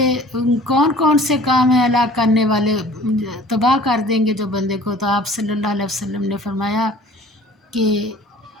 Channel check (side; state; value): both; normal; correlation 0.49